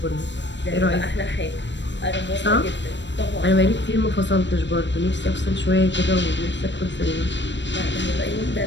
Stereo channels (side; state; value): right; late; 0.53 ms